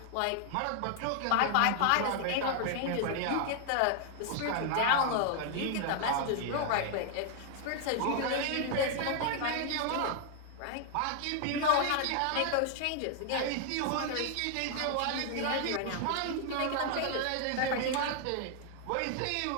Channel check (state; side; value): different; both; correlation 0.00